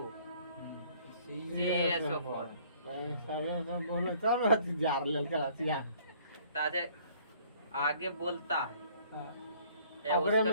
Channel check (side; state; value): both; inverted; correlation -0.58